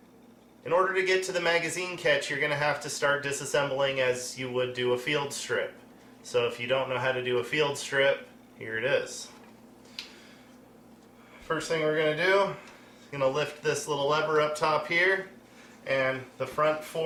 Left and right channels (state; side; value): identical; both; correlation 1.00